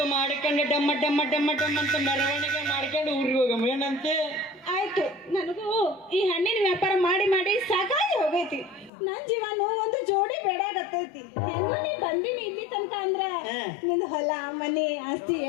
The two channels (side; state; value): right; drops out; at 8.9 s